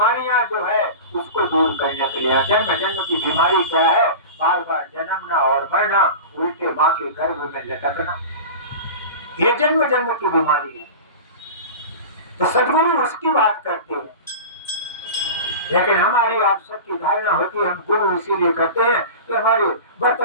जो है उसको दूर करने के लिए। जन्म जन्म की बीमारी क्या है? बार बार जन्मना और मरना, उल्टे माँ के गर्भ में लटकना, ये जन्म जन्म की बीमारी है। तो सदगुरु उसकी बात करते हैं, लेकिन हमारी आप सबकी धारणा होती है हम गुरु इसीलिए कहते हैं कि हमारे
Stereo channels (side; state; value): both; inverted; correlation -0.32